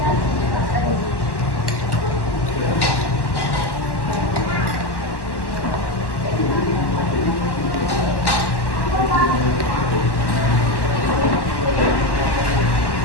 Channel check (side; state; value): right; late; 1.1 ms